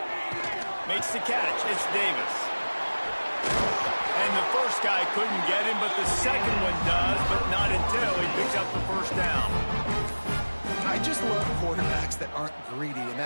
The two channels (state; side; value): inverted; both; correlation -1.00